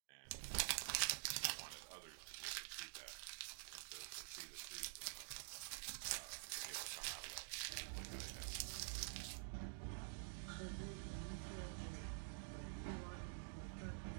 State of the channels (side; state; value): left; silent; digital silence